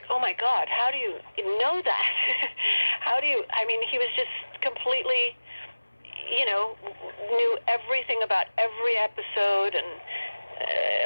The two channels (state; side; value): inverted; both; correlation -1.00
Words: oh my God, how do you know that? I mean, he was just completely, knew everything about every episode, and